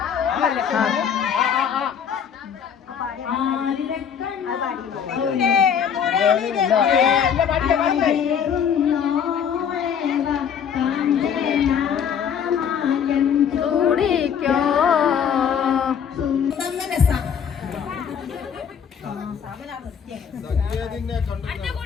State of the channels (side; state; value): right; quieter; 7.8 dB